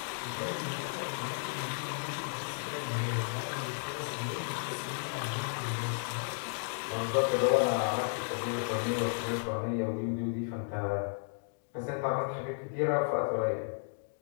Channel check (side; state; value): right; silent; digital silence